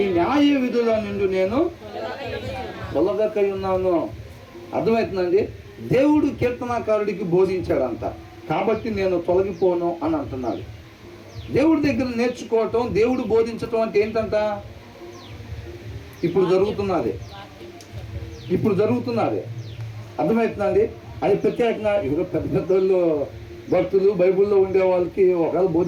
న్యాయ విధుల నుండి నేను తొలగకై ఉన్నాను. అర్థమవుతుందండి? దేవుడు కీర్తనకారుడికి బోధించాడంట. కాబట్టి నేను తొలగిపోను అని అంటున్నాడు. దేవుడి దగ్గర నేర్చుకోవటం, దేవుడు బోధించటం అంటే ఏంటంట? ఇప్పుడు జరుగుతున్నది అర్థమవుతుందండి. అది ప్రత్యేకంగా ఇప్పుడు పెద్ద పెద్దోళ్ళు భక్తులు బైబిల్లో ఉండే వాళ్ళకి ఒకవేళ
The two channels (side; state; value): both; identical; correlation 1.00